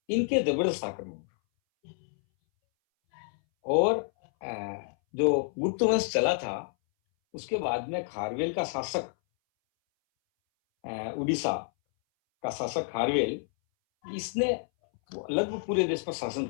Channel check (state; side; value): silent; right; 58 dB below the other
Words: इनके जबरदस्त आक्रमण, और जो गुप्त वंश चला था उसके बाद में खारवेल का शासक, उड़ीसा का शासक खारवेल, इसने लगभग पूरे देश पर शासन